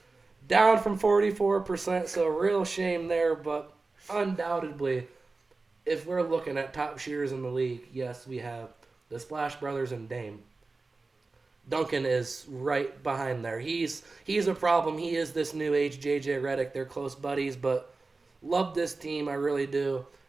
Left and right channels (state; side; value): quieter; left; 3.7 dB